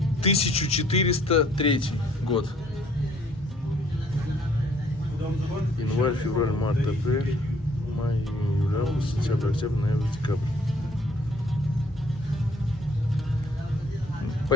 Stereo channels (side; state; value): both; normal; correlation 0.61